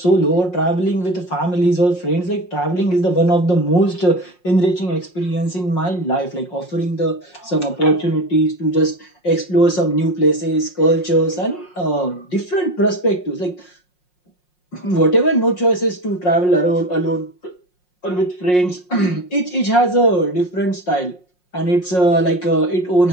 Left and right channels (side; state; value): right; late; 5.6 ms